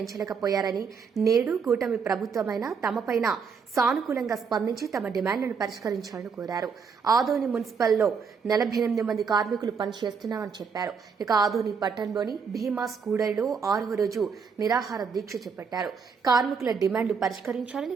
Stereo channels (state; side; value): quieter; left; 5.9 dB